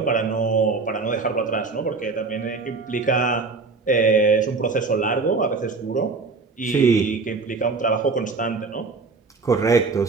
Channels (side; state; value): left; quieter; 4.2 dB